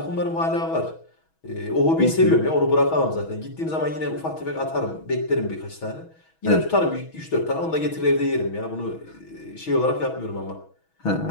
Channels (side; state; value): right; late; 6.2 ms